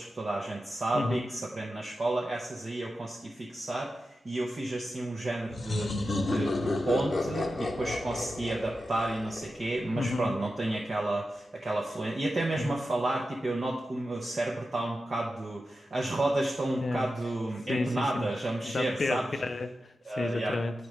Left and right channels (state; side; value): normal; both; correlation 0.91